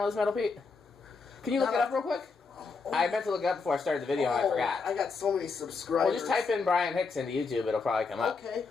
is, Metal Pete? Can you look it up real quick? I meant to look it up before I started the video, and I forgot. I got so many subscribers. Well, just type in Brian Hicks into YouTube. It'll probably come up. Okay.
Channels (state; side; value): quieter; right; 4.6 dB